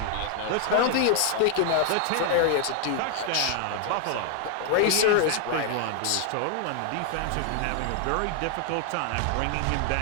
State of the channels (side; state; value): both; different; correlation 0.00